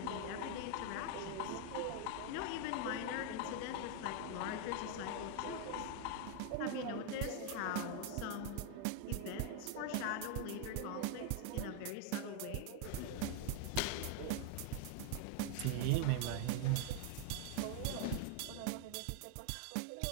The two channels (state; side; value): different; both; correlation 0.01